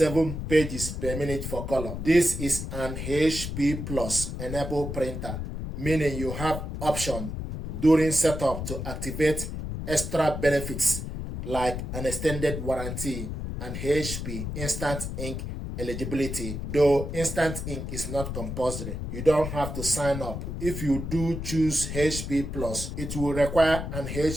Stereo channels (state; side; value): noise; left; rumble, 5 dB below the sound